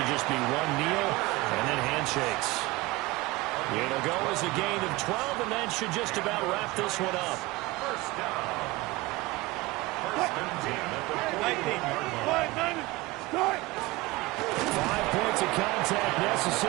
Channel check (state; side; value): quieter; left; 21.1 dB